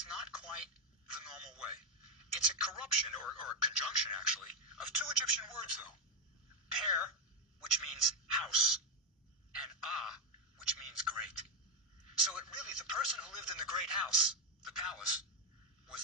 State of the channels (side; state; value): both; normal; correlation 0.05